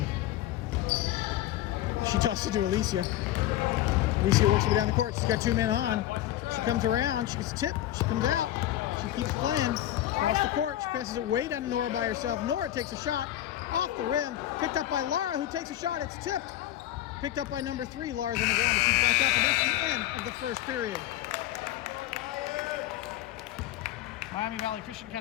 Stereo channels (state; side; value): quieter; right; 13.6 dB